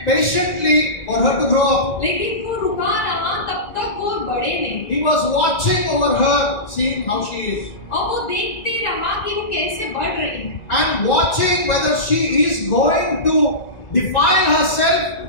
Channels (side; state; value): right; late; 1.9 ms